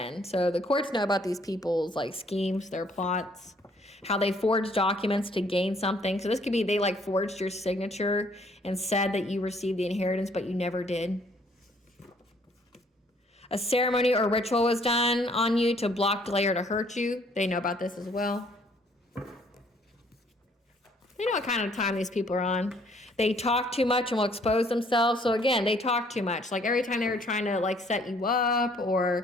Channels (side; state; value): both; normal; correlation 0.62